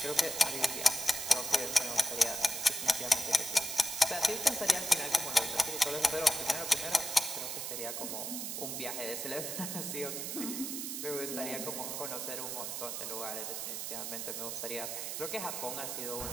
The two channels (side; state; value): right; noise; hiss, 4 dB below the sound